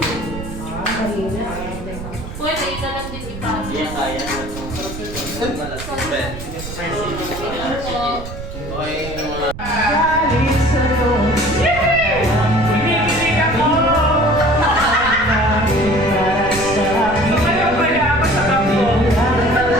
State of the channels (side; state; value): right; noise; rumble, 10 dB below the sound